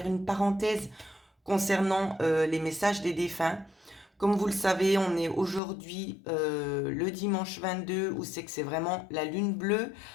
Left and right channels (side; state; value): right; drops out; at 5.6 s